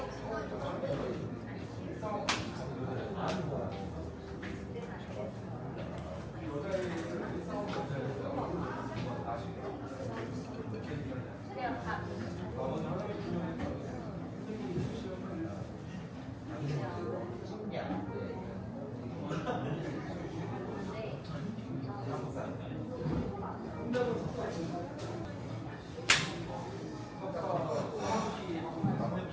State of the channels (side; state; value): both; identical; correlation 1.00